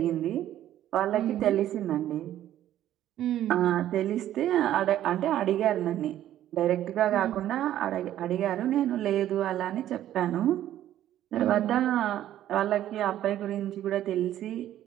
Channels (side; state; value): left; quieter; 12.3 dB